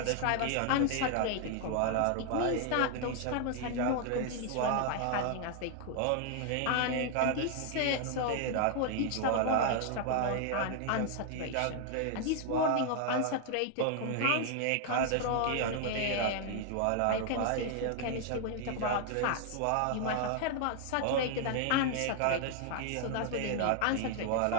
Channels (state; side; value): different; both; correlation 0.00